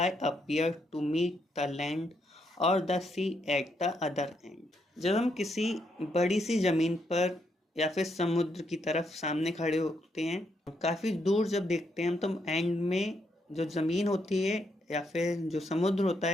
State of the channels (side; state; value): both; normal; correlation 0.77